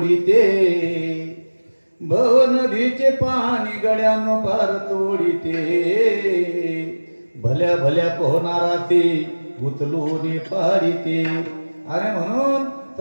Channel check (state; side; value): inverted; both; correlation -1.00